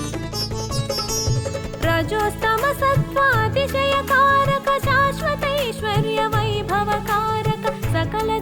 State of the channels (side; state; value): both; identical; correlation 1.00